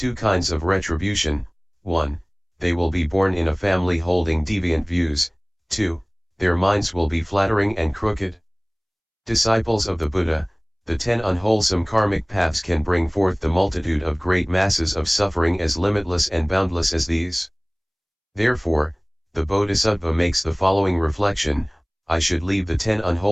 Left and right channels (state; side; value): identical; both; correlation 1.00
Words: kinds of retribution: 1. They will be born in a family holding deviant views, 2. Their minds will be flattering and crooked. Disciples of the Buddha, the 10 unwholesome karmic paths can bring forth the multitude of great masses of suffering as limitless and boundless as these. Therefore, the Bodhisattva makes the following reflection: I should leave the 10